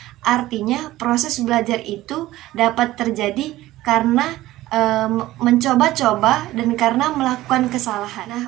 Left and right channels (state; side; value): quieter; left; 16.3 dB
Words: Artinya proses belajar itu dapat terjadi karena mencoba-coba dan karena melakukan kesalahan. Nah,